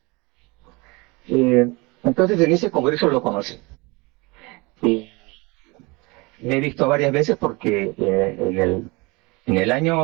Entonces en ese congreso lo conocí. Me he visto varias veces porque en el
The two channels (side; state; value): left; quieter; 25.9 dB